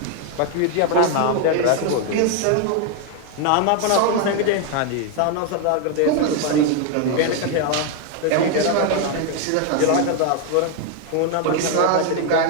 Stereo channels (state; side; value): different; both; correlation 0.01